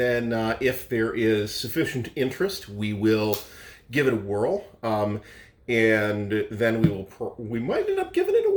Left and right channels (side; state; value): both; identical; correlation 1.00